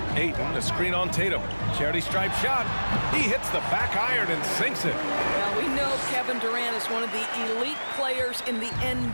Ayton, the screen on Tatum. Charity stripe shot. He hits the back iron and sinks it. Now, we know Kevin Durant is one of the elite players in the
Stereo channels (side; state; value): both; inverted; correlation -1.00